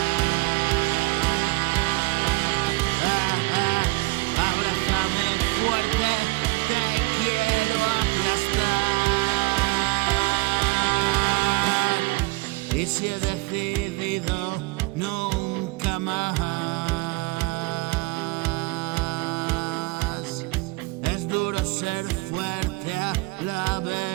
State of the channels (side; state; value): left; quieter; 23.3 dB